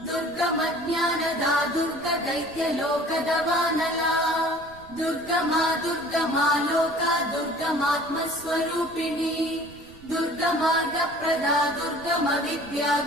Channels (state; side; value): noise; right; rumble, 22 dB below the sound